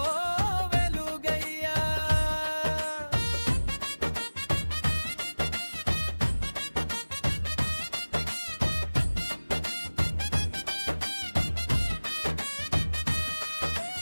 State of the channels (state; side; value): inverted; both; correlation -1.00